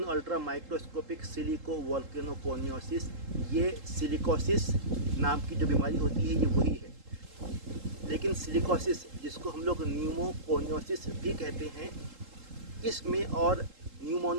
ultra microscopic silico volcano कोनियोसिस ये सिलिकोसिस नाम की जो बीमारी होती है ये वही है। लेकिन सिलिकोसिस, जिसको हम लोग न्यूमोकोनियोसिस भी कहते हैं, इसमें और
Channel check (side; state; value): left; late; 3.8 ms